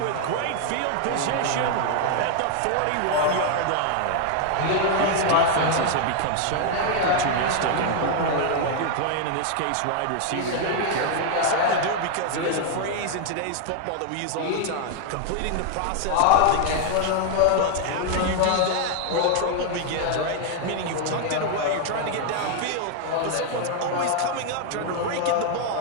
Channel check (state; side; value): different; both; correlation 0.00